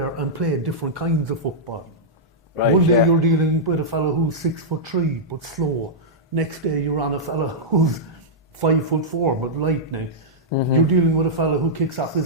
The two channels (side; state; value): both; normal; correlation -0.09